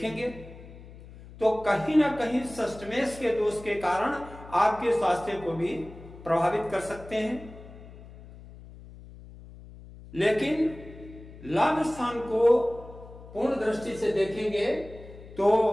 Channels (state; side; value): noise; left; hum, 18 dB below the sound